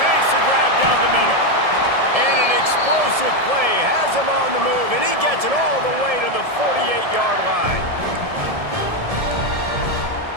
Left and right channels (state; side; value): late; left; 1.7 ms